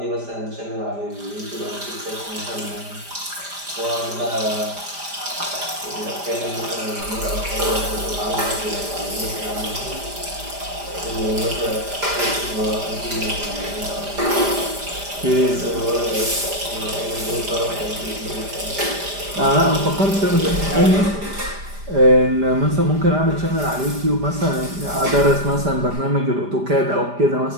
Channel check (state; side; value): late; left; 5.0 ms